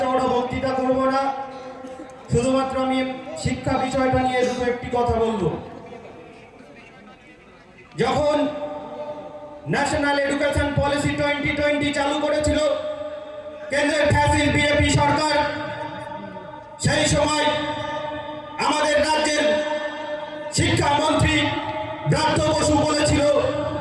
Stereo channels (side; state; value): both; identical; correlation 1.00